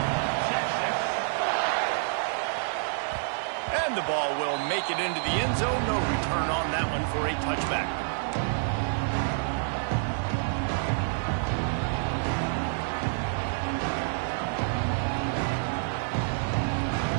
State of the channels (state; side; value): silent; left; 59 dB below the other